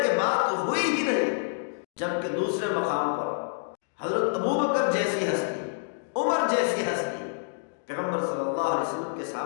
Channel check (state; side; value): silent; right; digital silence